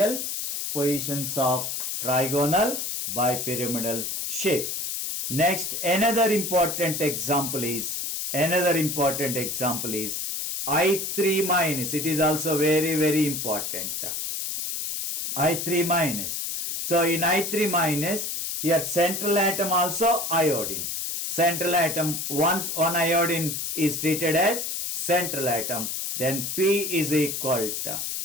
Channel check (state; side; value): noise; left; hiss, 3 dB below the sound